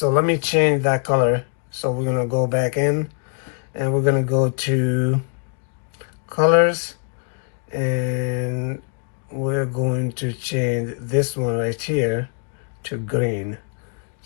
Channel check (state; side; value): quieter; right; 37.1 dB